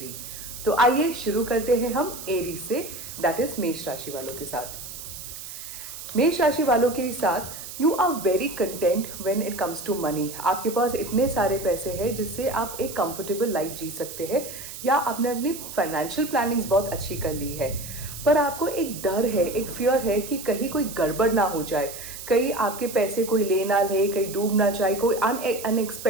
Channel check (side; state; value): right; noise; hiss, 11 dB below the sound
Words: तो आइए शुरू करते हैं हम एरीज से, दैट इज मेष राशि वालों के साथ। मेष राशि वालों के साथ you are very content when it comes to money. आपके पास इतने सारे पैसे हैं जिससे आप एक कंफर्टेबल लाइफ जी सकते हैं, या आपने अपनी फाइनेंशियल प्लानिंग्स बहुत अच्छी कर ली है। पर आपको एक डर है, एक फियर है कि कहीं कोई गड़बड़ ना हो जाए, कहीं आपके पैसे कोई ले ना ले, कहीं डूब ना जाए, कोई